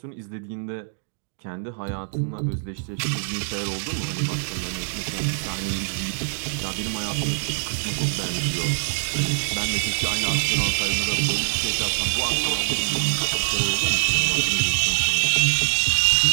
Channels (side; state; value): left; silent; digital silence